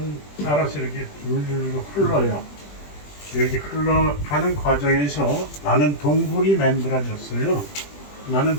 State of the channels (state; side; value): late; right; 20 ms